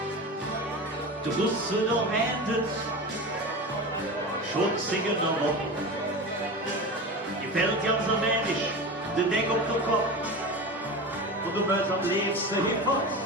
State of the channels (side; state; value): both; normal; correlation 0.28